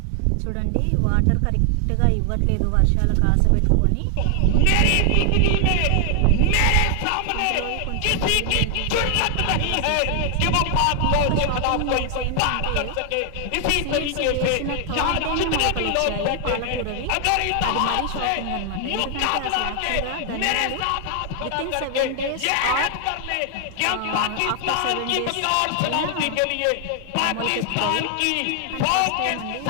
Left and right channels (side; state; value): both; different; correlation 0.00